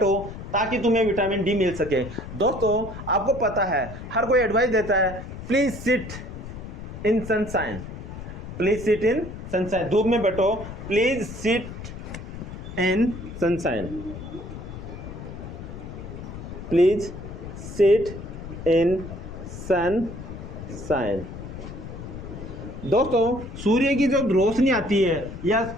ताकि तुम्हें विटामिन डी मिल सके। दोस्तों आपको पता है हर कोई एडवाइस देता है, please sit in sunshine, please sit in sunshine, धूप में बैठो, please sit in sunshine, please sit in sunshine. दोस्तों सूर्य की जो रोशनी आती है या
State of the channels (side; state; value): left; noise; rumble, 10 dB below the sound